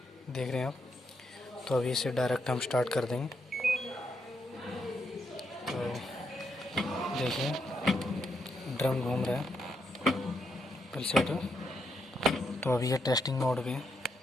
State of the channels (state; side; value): normal; both; correlation 0.79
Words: देख रहे हैं आप। तो अभी इसे डायरेक्ट हम स्टार्ट कर देंगे। तो देखिए, ड्रम घूम रहा है पल से तो अभी ये टेस्टिंग मोड पे है,